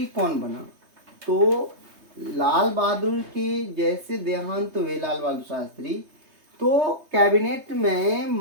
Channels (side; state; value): left; late; 3.2 ms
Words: कौन बना? तो लाल बहादुर के जैसे देहांत हुए लाल बहादुर शास्त्री, तो कैबिनेट में